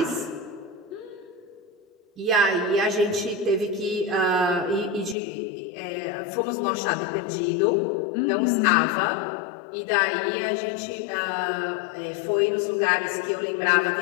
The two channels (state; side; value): drops out; right; at 5.2 s